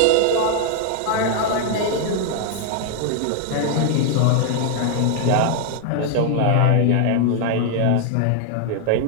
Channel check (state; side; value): different; both; correlation 0.00